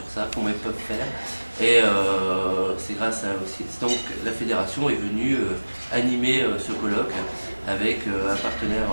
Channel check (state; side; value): inverted; both; correlation -1.00